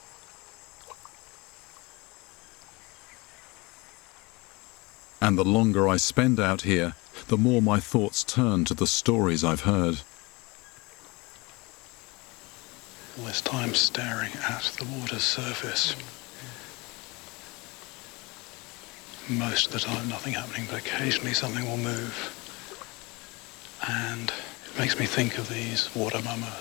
And the longer I spend out here, the more my thoughts turn to the stories I've heard. All this time staring at the water's surface. Most of the time nothing happening, but occasionally something will move. And it makes me think of these water mama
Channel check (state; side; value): quieter; right; 25.4 dB